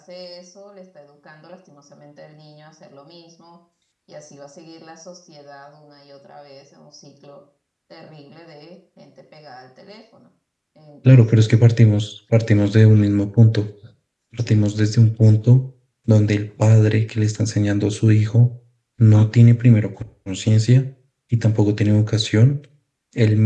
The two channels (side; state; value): both; identical; correlation 1.00